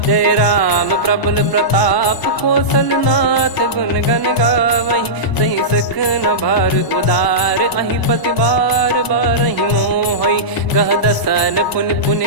जय राम प्रबल प्रताप कौशल नाथ गुण गण गावै सही सख न भार उदार अहि पति बार बारहि मोहै गह दसन पुन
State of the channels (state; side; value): late; right; 1.0 ms